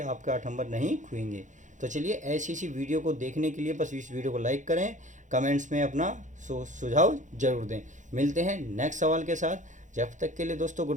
आपके 8 नंबर नहीं खोएंगे। तो चलिए ऐसी सी वीडियो को देखने के लिए बस इस वीडियो को लाइक करें, कमेंट्स में अपना सुझाव जरूर दें। मिलते हैं नेक्स्ट सवाल के साथ। जब तक के लिए दोस्तों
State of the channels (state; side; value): late; left; 0.36 ms